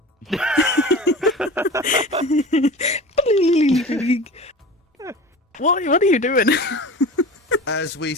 What are you doing? as we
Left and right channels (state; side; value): normal; both; correlation 0.35